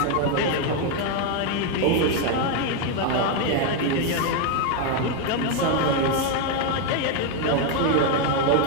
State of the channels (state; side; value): different; both; correlation 0.01